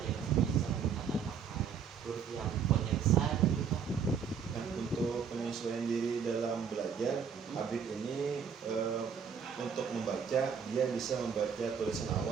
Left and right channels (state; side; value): quieter; left; 6.9 dB